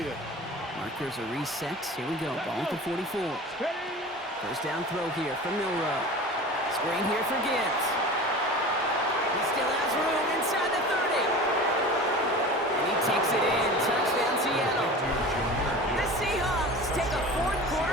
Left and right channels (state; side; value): normal; both; correlation 0.36